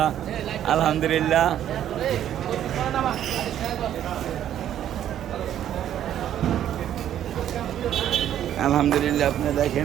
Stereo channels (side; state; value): left; quieter; 10.9 dB